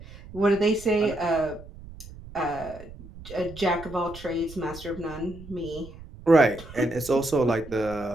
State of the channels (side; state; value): right; noise; rumble, 16 dB below the sound